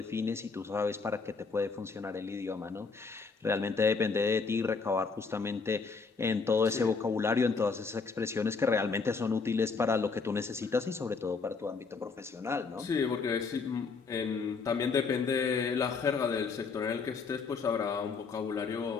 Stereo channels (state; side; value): quieter; right; 4.7 dB